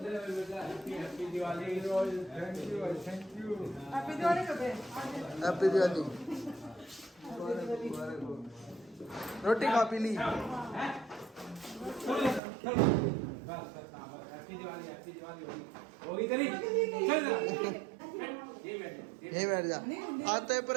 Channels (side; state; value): left; drops out; at 12.4 s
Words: Happy Diwali thank you happy Diwali कब है? हैप्पी दिवाली। रोटी खा पी ली। हैप्पी दिवाली होगी तेरी चल जा यही बैठ जा। आते